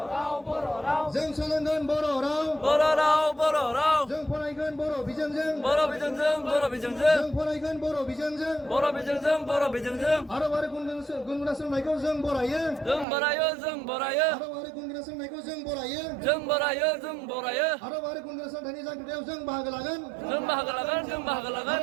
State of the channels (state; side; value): drops out; left; at 13.1 s